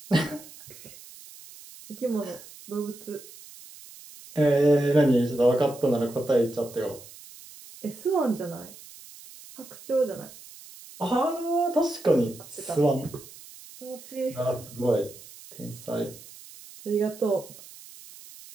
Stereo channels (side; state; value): right; noise; hiss, 18 dB below the sound